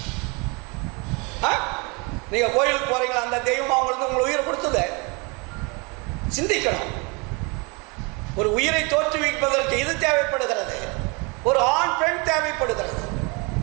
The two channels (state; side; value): quieter; left; 30.1 dB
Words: நீங்க கோயிலுக்கு போறீங்களா? அந்த தெய்வம் அவங்களுக்கு உங்களை உயிரை கொடுத்தது. சிந்திக்கணும். ஒரு உயிரை தோற்றுவிப்பதற்கு இது தேவைப்படுகிறது, ஒரு ஆண் பெண் தேவைப்படுகிறது.